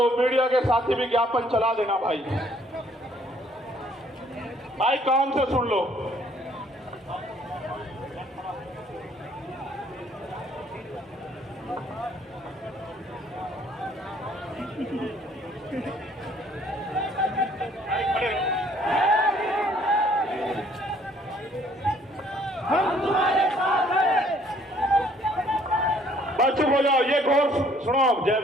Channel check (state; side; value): normal; both; correlation 0.61